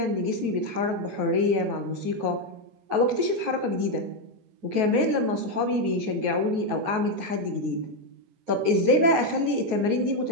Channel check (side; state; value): left; late; 9.4 ms